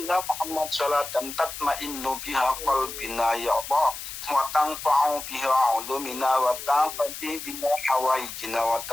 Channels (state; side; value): noise; left; hiss, 9 dB below the sound